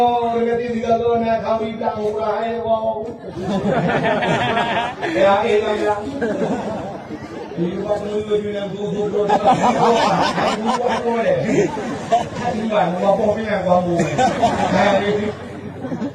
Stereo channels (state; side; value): identical; both; correlation 1.00